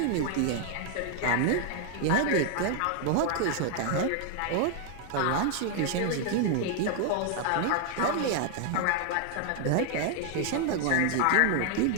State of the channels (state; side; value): different; both; correlation 0.00